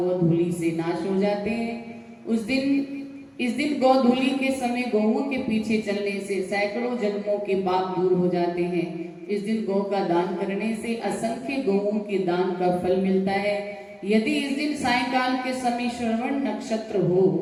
से नाश हो जाते हैं। इस दिन गोधूली के समय गौओं के पीछे चलने से सैकड़ों जन्मों के पाप दूर हो जाते हैं। इस दिन गौ का दान करने से असंख्य गौओं के दान का फल मिलता है। यदि इस दिन सायंकाल के समय श्रवण नक्षत्र हो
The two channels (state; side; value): identical; both; correlation 1.00